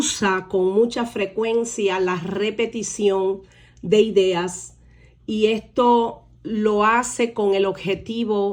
con mucha frecuencia la repetición de ideas, y esto lo hace con el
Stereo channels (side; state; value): both; identical; correlation 1.00